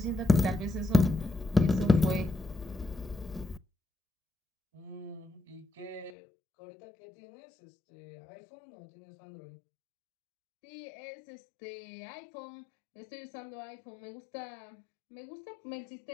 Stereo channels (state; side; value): drops out; right; at 6.1 s